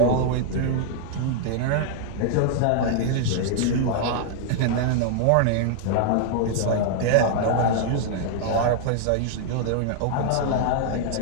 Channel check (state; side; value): different; both; correlation -0.01